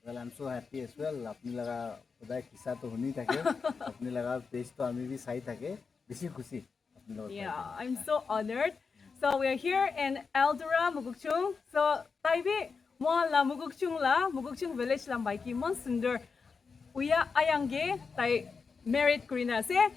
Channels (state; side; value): quieter; right; 5.1 dB